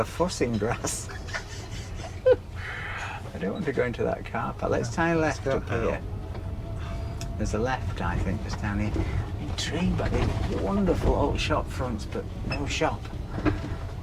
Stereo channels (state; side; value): identical; both; correlation 1.00